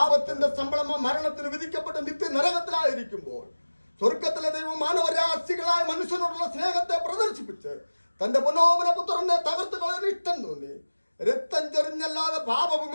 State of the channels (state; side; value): inverted; both; correlation -1.00